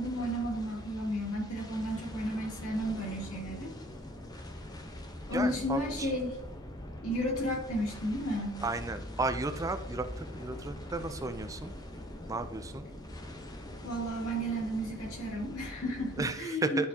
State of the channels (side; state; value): both; normal; correlation 0.56